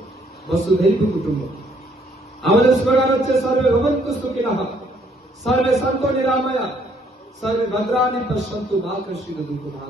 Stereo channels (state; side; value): normal; both; correlation 0.66